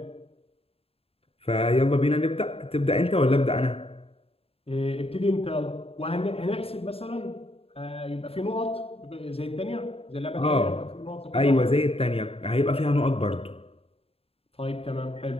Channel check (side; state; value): right; late; 0.28 ms